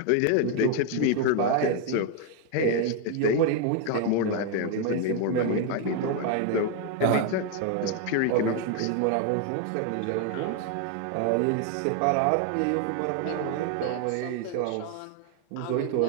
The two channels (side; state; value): both; different; correlation 0.01